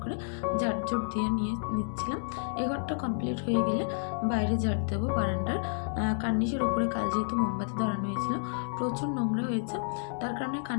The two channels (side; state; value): right; silent; 58 dB below the other